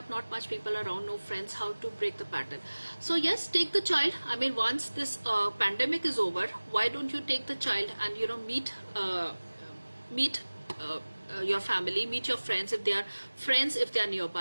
not much people around, no friends, how to break the pattern. So yes, take the child. I mean, once this pandemic is over, why don't you take the child and meet your family, meet your friends if they are friends, if they are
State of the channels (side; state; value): both; inverted; correlation -1.00